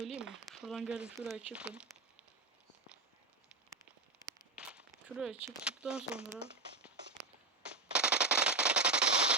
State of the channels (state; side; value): quieter; left; 3.6 dB